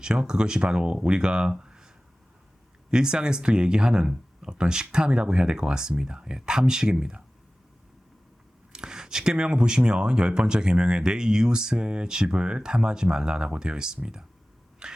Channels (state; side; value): normal; both; correlation 0.97